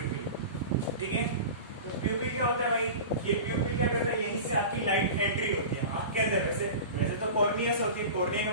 ठीक है. तो प्यूपिल क्या होता है भाई? ये प्यूपिल क्या करता है? यहीं से आपकी लाइट एंट्री होती है आंख के अंदर. वैसे तो कॉर्निया से होती है, कॉर्निया के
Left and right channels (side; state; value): both; inverted; correlation -0.32